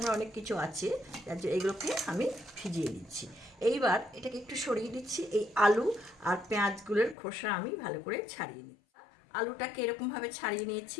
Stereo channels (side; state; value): right; drops out; at 7.2 s